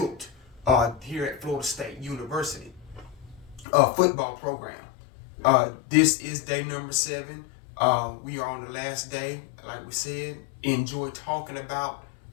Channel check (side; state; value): right; drops out; at 3.7 s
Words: here at Florida State University football program. This is day number 7. We are on the last day, like we said. Enjoy talking about